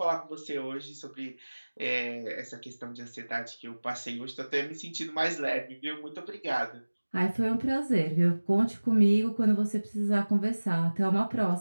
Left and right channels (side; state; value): both; inverted; correlation -1.00